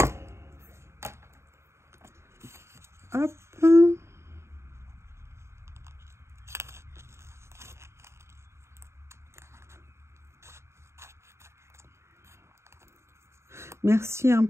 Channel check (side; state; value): left; late; 0.13 ms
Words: Hop. Merci hein,